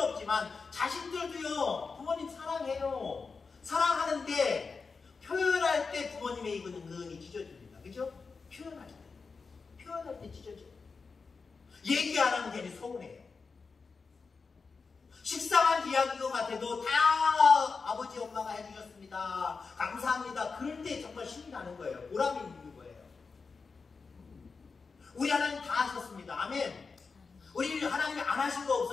없지만 자식들도요, 부모님 사랑해요. 사랑하는데 표현할 때 부모님의 입은 은근히 찢어집니다. 그죠? 표현할 때 찢어져요. 얘기 안 하면 괜히 서운해요. 식상한 이야기인 것 같아도 다 아버지 엄마가 해주셨습니다, 감사합니다, 그럴 때 정말 힘이 나는 거예요. 보람이 있는 거예요. 우리 하나님 다 하셨습니다. 아멘. 우리 하나님이 안 하신 거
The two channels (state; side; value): quieter; right; 4.7 dB